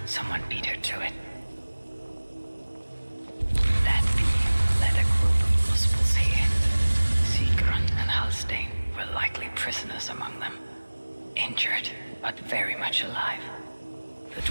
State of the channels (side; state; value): both; inverted; correlation -1.00